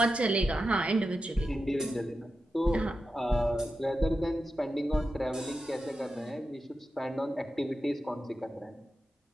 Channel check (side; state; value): both; normal; correlation 0.90